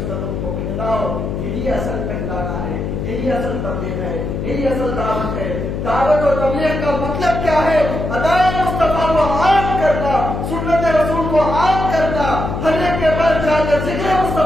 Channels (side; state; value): left; noise; hum, 3 dB below the sound